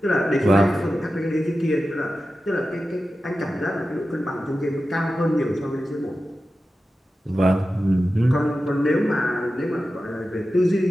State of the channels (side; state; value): both; normal; correlation 0.93